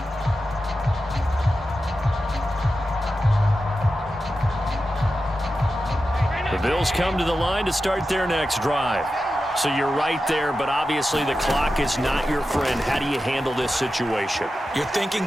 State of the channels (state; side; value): normal; both; correlation 0.91